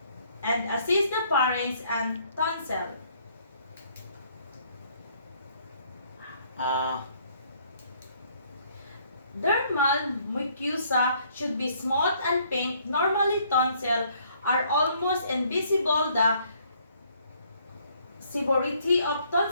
and assist the parents and tonsil. Dermal mucosa should be smooth and pink. Normally, tonsil are almost invisible. The severity of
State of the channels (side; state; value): both; inverted; correlation -0.64